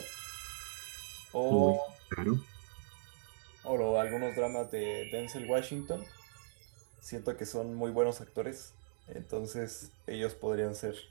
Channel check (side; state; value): left; silent; digital silence